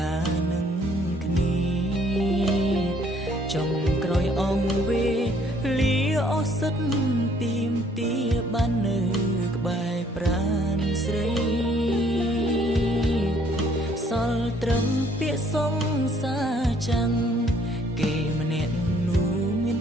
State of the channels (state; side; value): normal; both; correlation 0.62